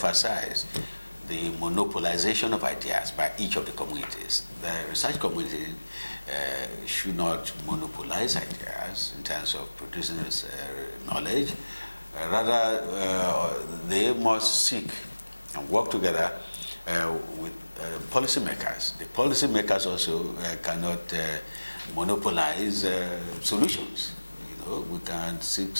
the monopolization of ideas by each of the communities. The research community should not monopolize ideas in terms of producing knowledge. Rather, they must seek and work together with policymakers. The policymakers also cannot monopolize solutions. We can seek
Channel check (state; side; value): inverted; both; correlation -1.00